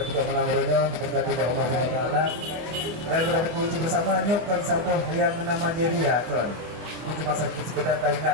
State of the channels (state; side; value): late; left; 24 ms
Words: Malam Muronyo diberkati oleh Allah SWT dan berkunci bersama nyokkan sampo yang menama Jeria tuan. Itu cuma sekedar